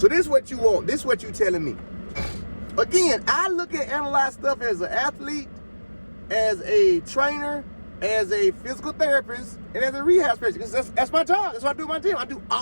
this is what you want. This is what you telling me. Again, I look at analyze stuff as an athlete, as a trainer, as a physical therapist, and as a rehab specialist. That's my job. That's what I do in my gym. I do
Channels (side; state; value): both; inverted; correlation -1.00